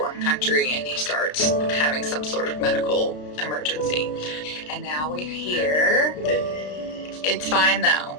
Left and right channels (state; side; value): late; right; 33 ms